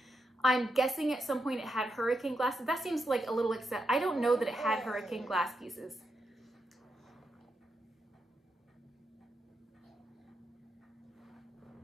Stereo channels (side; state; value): both; normal; correlation 0.84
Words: I'm guessing at some point it had hurricane glass. That seems like a little excess. I don't know that it had hurricane glass pieces.